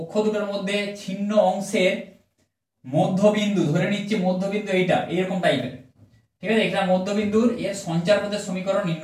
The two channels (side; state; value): both; identical; correlation 1.00